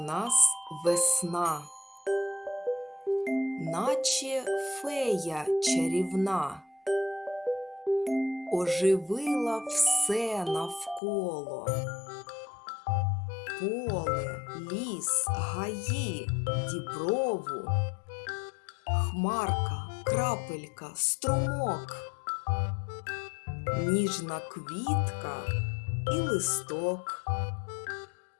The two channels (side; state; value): right; drops out; at 11.0 s